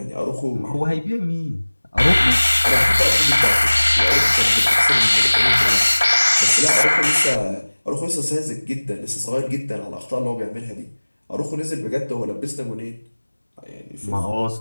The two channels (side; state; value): both; inverted; correlation -1.00